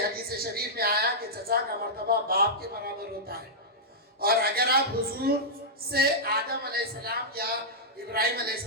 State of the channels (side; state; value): both; normal; correlation -0.10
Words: شریف میں آیا کہ چچا کا مرتبہ باپ کے برابر ہوتا ہے۔ اور اگر آپ حضور سے آدم علیہ السلام یا ابراہیم علیہ